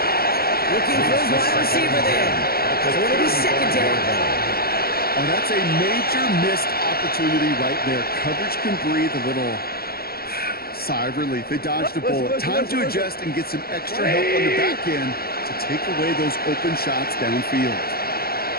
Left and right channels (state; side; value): late; right; 0.44 ms